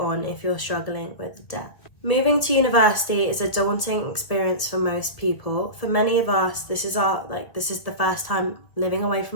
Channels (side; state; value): right; late; 1.9 ms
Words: if you're struggling with debt. Moving to university is a daunting experience for most people. For many of us, this is the first time living away